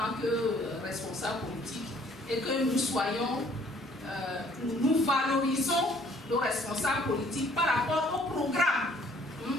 que responsables politiques et que nous soyons, nous valorisons nos responsables politiques par rapport aux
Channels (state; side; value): normal; both; correlation 0.60